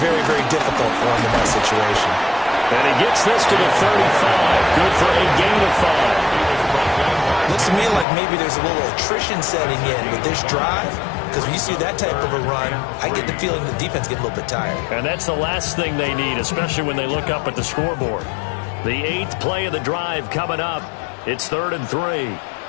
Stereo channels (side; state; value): right; drops out; at 8.1 s